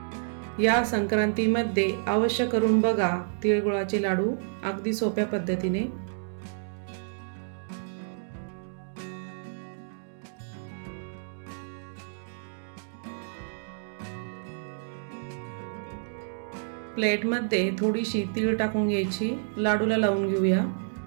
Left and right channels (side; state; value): left; silent; digital silence